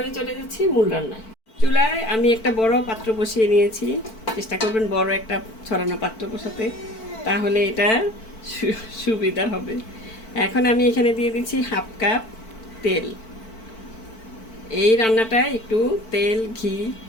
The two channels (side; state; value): right; late; 4.5 ms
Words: চলে যাচ্ছি মূল রান্নায়। চুলায় আমি একটা বড় পাত্র বসিয়ে নিয়েছি, চেষ্টা করবেন বড় একটা ছড়ানো পাত্র বসাতে, তাহলে এটা সুবিধা হবে। এখন আমি এখানে দিয়ে দিচ্ছি 1/2 কাপ তেল। এই রান্নাটায় একটু তেল ঘি,